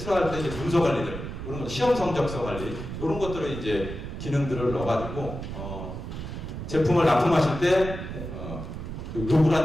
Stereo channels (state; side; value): noise; right; rumble, 8 dB below the sound